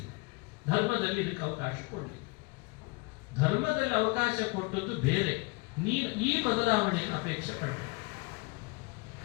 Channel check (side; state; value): right; quieter; 27.4 dB